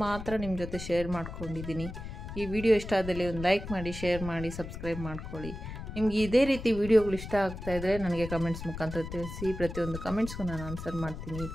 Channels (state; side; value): noise; left; rumble, 9 dB below the sound